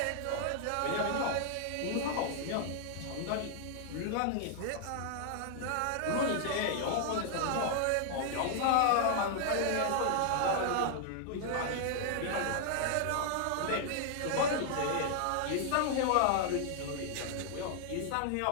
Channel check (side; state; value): both; different; correlation 0.00